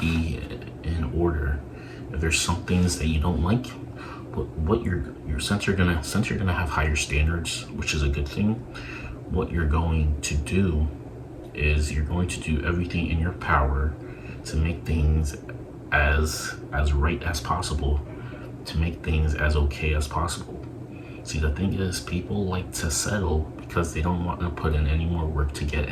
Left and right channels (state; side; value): identical; both; correlation 1.00